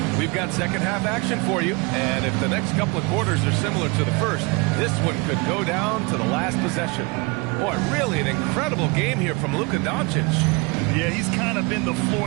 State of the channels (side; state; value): left; quieter; 27.8 dB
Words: We've got second half action for you, and if the next couple of quarters are similar to the first, this one could go down to the last possession. Boy, really an incredible game here from Luka Doncic. Yeah, he's kind of been the